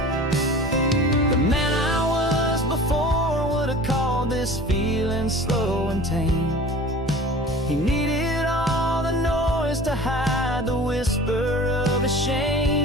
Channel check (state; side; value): normal; both; correlation 0.41